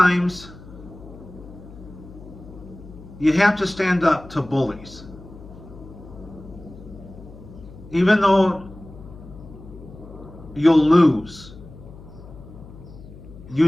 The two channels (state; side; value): noise; left; hum, 17 dB below the sound